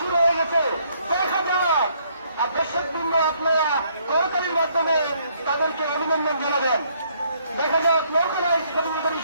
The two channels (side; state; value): both; inverted; correlation -0.67